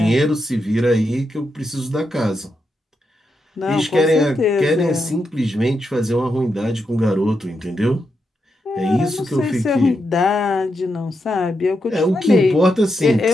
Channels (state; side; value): normal; both; correlation 0.84